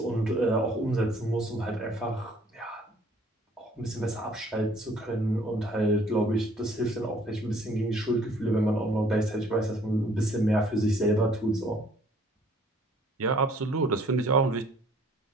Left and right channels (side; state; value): both; normal; correlation 0.58